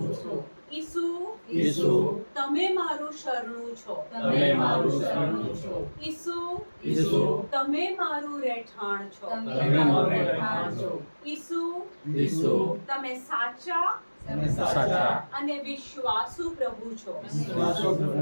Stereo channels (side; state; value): both; inverted; correlation -1.00